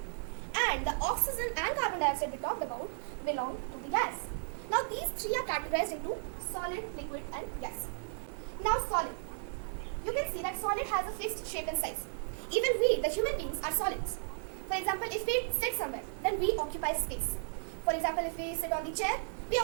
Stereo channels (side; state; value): left; silent; digital silence